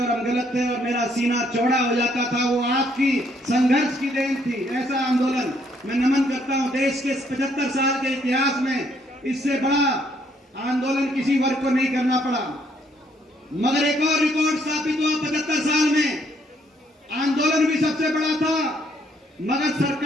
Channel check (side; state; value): both; normal; correlation 0.69